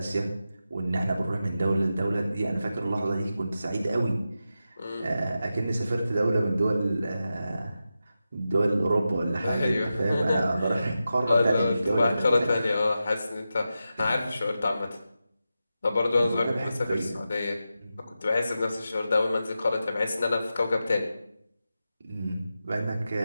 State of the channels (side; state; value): both; inverted; correlation -0.91